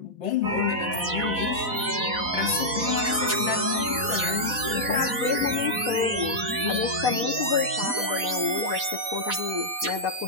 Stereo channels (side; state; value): left; late; 4.1 ms